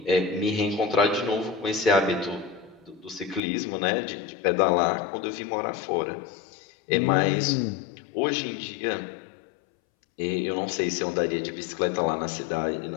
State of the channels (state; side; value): drops out; right; at 3.4 s